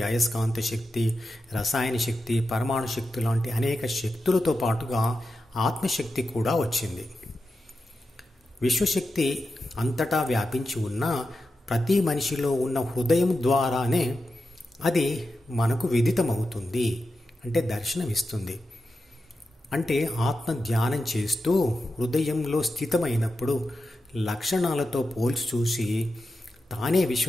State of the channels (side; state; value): both; normal; correlation 0.89